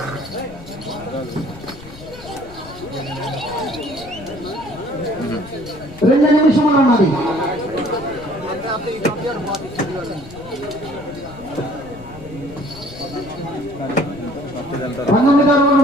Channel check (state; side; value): noise; left; rumble, 17 dB below the sound